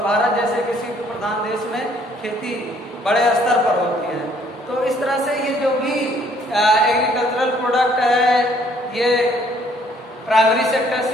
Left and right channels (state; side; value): normal; both; correlation 0.63